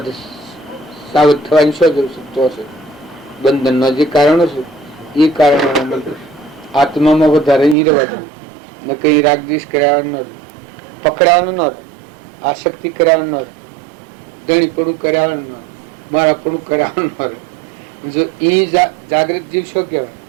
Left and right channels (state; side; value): drops out; left; at 7.8 s